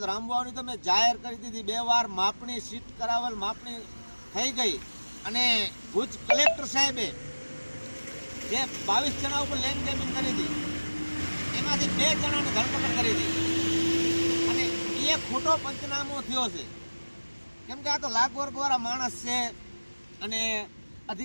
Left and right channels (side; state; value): both; inverted; correlation -1.00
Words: તો રામવાવની તો મેં જાહેર કરી દીધી, 2 વાર માપણી સીટ કરાવેલ, માપણી થઈ ગઈ અને ભુજ કલેક્ટર સાહેબે જે 22 જણા ઉપર લેન્ડ ગ્રેબિંગ કરી હતી એમાંથી 2 જણાની ધરપકડ કરી હતી અને એ ખોટો પંચનામો થયો છે, કેમ કે આ તો લાખ વર્ગવાળા માણસ છે અને